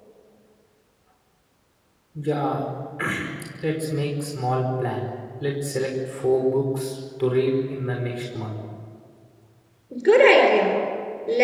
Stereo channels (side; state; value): both; identical; correlation 1.00